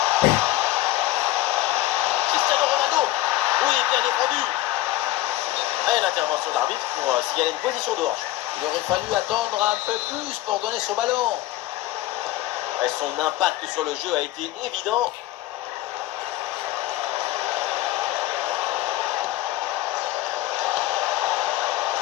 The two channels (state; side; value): quieter; right; 15.9 dB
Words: Cristiano Ronaldo. Oui, bien défendu. Et l'intervention de l'arbitre pour signaler une position de hanche. Il aurait fallu attendre un peu plus pour donner ce ballon. Et son impact sur le jeu a été évident.